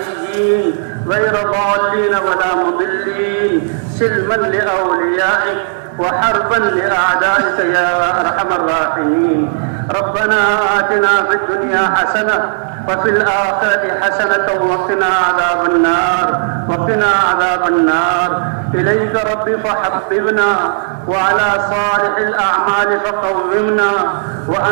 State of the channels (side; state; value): left; silent; digital silence